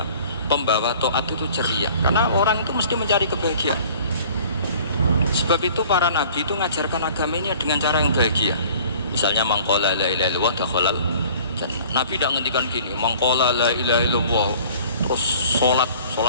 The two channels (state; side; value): inverted; both; correlation -0.49